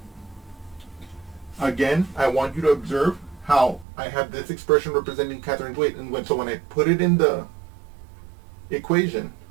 Again, I want you to observe how I have this expression representing Catherine's weight, and so when I put it in the equation,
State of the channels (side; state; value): left; drops out; at 3.9 s